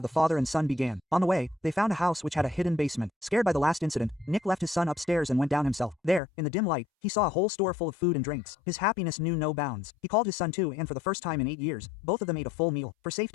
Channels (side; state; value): right; drops out; at 6.2 s